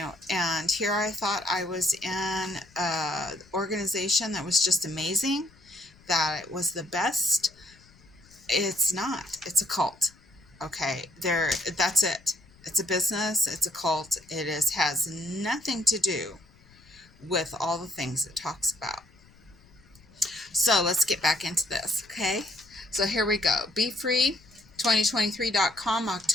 and here I thought I was in an organization that was just amazing, that it was the best. It's not. It's a cult. Okay, that's it. It's a business. It's a cult. It has nothing to do with all the things it talks about. So let's get back into this, okay? So here we go. BeFree2023.com,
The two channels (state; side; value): noise; left; rumble, 27 dB below the sound